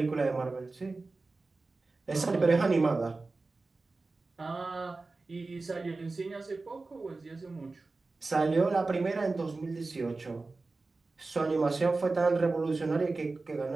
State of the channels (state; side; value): quieter; left; 3.6 dB